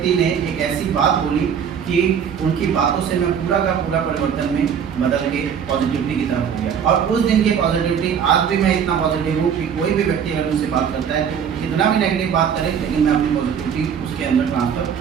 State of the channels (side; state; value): left; quieter; 7.7 dB